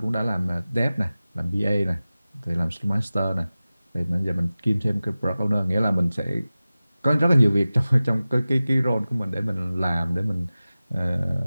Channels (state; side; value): inverted; both; correlation -0.96